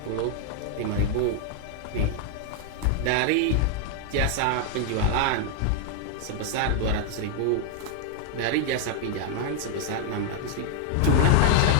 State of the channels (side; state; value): both; different; correlation 0.00